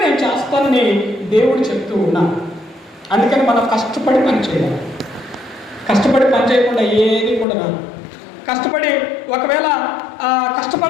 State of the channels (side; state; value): right; drops out; at 7.5 s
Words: నేను చేస్తానని దేవుడు చెప్తూ ఉన్నాను. అందుకని మనం కష్టపడి పని చేయాలి. కష్టపడి పని చేయకుండా ఏది కూడా రాదు. కష్టపడి ఒకవేళ